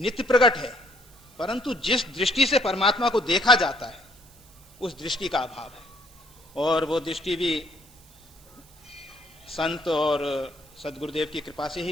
प्रकट है, परंतु जिस दृष्टि से परमात्मा को देखा जाता है उस दृष्टि का अभाव है। और वो दृष्टि भी संत और सद्गुरुदेव की कृपा से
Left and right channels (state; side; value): noise; right; hiss, 26 dB below the sound